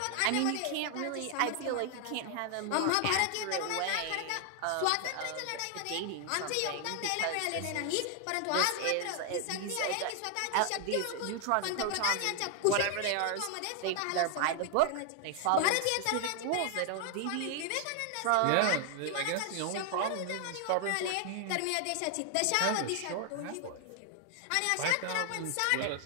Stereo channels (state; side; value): different; both; correlation 0.00